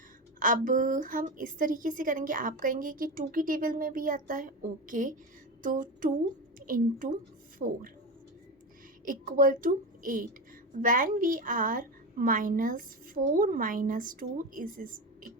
अब हम इस तरीके से करेंगे, आप कहेंगे कि 2 की टेबल में भी आता है, ओके। तो 2 into 4 equal to 8। When we are minus 4 minus 2 is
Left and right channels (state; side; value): normal; both; correlation 0.20